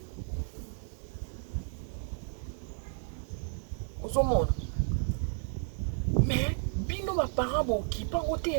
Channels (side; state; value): left; silent; digital silence